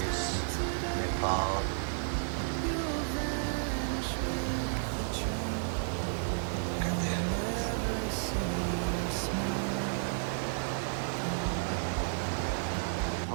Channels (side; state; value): left; silent; 56 dB below the other